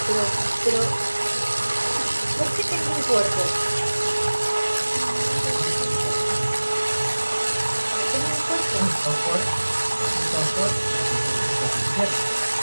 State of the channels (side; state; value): both; inverted; correlation -1.00